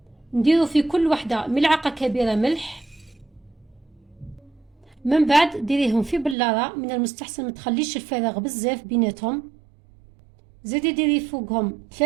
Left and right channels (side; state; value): left; drops out; at 6.4 s